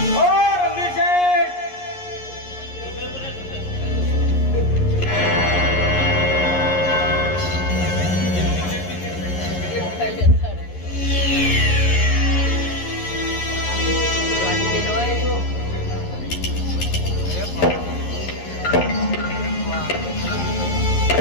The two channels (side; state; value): right; late; 11 ms